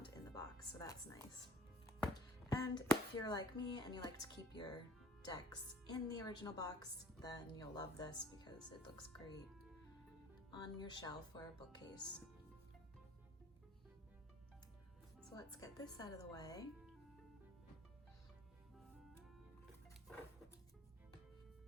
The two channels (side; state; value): both; normal; correlation 0.49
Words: in the box, so that's nice. And if you're like me and you like to keep your decks in the original box, then you'll love this because it looks great on your shelf or a bookcase. So let's get this out of the way.